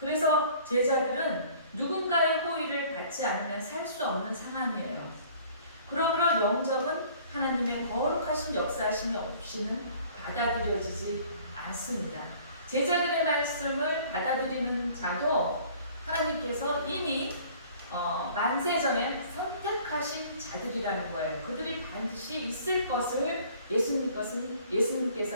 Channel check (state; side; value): inverted; both; correlation -0.52